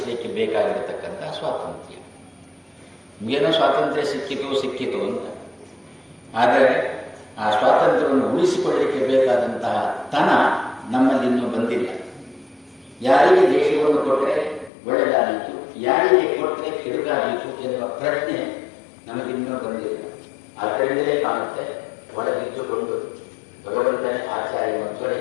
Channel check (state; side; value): drops out; right; at 14.7 s